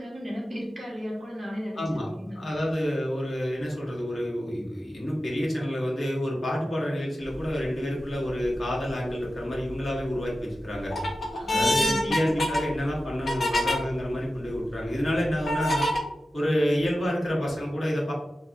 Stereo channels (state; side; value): normal; both; correlation 0.93